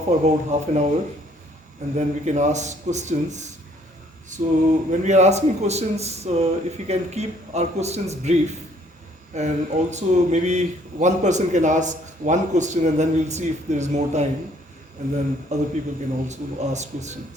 for about half an hour, and then we can ask questions. So when we are asking questions, if we can keep our questions brief, and also maybe one person can ask one question, and then we'll see if there is more time, and then other people can also ask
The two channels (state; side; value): normal; both; correlation 0.62